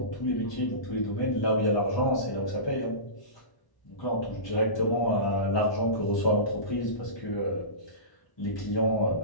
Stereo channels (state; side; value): late; right; 1.1 ms